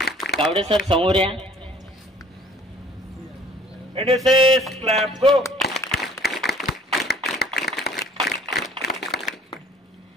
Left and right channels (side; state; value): both; normal; correlation 0.54